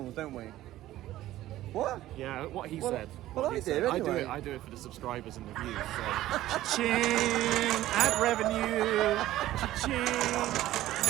don't we? What? Yeah, what he Well, said. well, What I he do, said. anyway. I do it for the subscribers and the views. So. Cha-ching! Ad revenue! Cha-ching!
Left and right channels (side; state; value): left; quieter; 14.7 dB